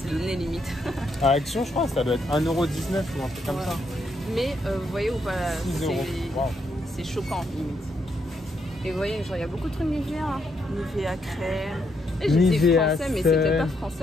donné limite. À Action, je crois, ça doit être 1,19 € ou un truc comme ça. Mais vous voyez ou pas, c'est wow. choquant, limite. Et vous voyez, genre, il y a beaucoup de trucs Nivea. Hein. Nivea crème. Et j'ai dit français, mais c'était pas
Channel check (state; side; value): normal; both; correlation 0.77